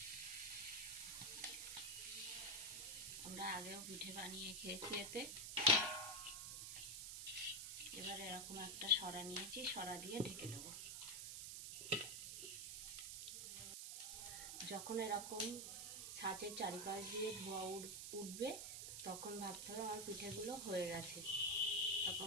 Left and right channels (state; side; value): noise; right; hiss, 5 dB below the sound